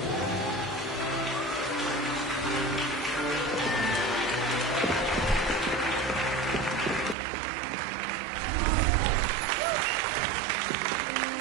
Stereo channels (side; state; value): left; drops out; at 7.2 s